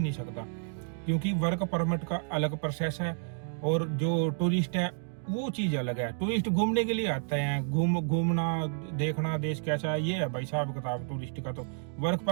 सकता। क्योंकि वर्क परमिट का अलग प्रोसेस है और जो टूरिस्ट है वो चीज अलग है। टूरिस्ट घूमने के लिए आते हैं, घूमना देखना देश कैसा है, ये है भाई साहब किताब टूरिस्ट का। तो वर्क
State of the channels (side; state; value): left; silent; digital silence